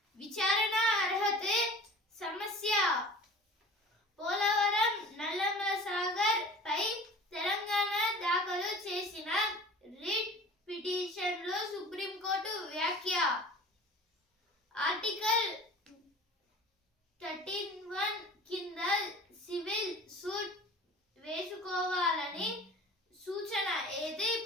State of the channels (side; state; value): both; normal; correlation 0.42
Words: విచారణ అర్హతే సమస్య. పోలవరం నల్లమల సాగర్ పై తెలంగాణ దాఖలు చేసిన రిట్ పిటిషన్ లో సుప్రీంకోర్టు వ్యాఖ్య. ఆర్టికల్ 13(1) కింద సివిల్ సూట్ వేసుకోవాలని సూచన. అయితే